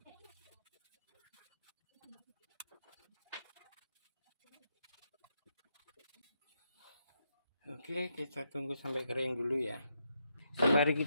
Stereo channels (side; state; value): both; inverted; correlation -0.80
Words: Oke, kita tunggu sampai kering dulu ya. Sembari